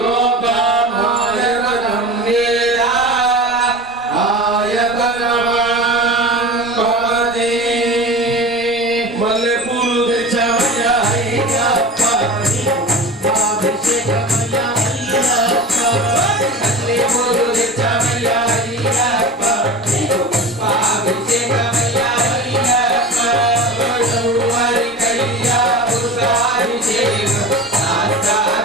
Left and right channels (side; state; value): both; normal; correlation 0.32